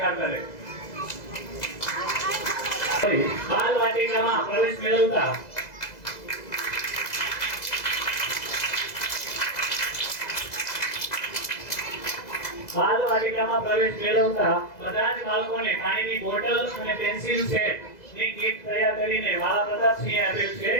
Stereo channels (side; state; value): right; late; 2.0 ms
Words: કરે. બાલ વાટિકામાં પ્રવેશ મેળવતા બધા જ બાળકોને પાણીની બોટલ અને પેન્સિલ સેટ ની કીટ તૈયાર કરીને વાલા પ્રતાપસિંહે આપેલ છે.